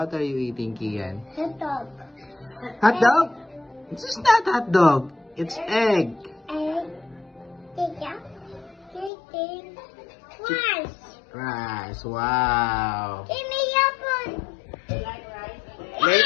are you eating, Kian? Hot dog. Hot dog? This is not hot dog. It's egg. Egg. Chicken. Rice. Rice. Wow. Give me your phone.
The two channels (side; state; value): right; drops out; at 9.1 s